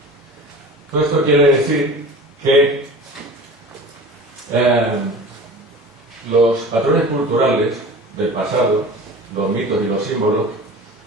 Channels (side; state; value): both; normal; correlation 0.38